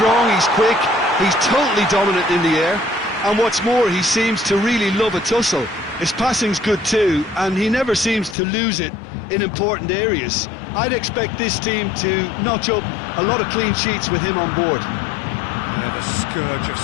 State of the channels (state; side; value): drops out; right; at 8.3 s